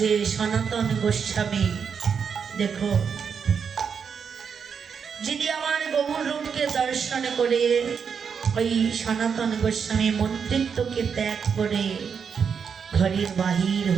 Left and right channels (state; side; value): quieter; left; 6.6 dB